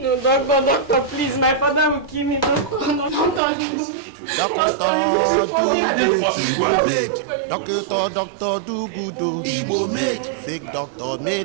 doctor, please, my father will kill me. Doctor do good, Igbo made. Fake doctor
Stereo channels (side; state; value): left; drops out; at 3.4 s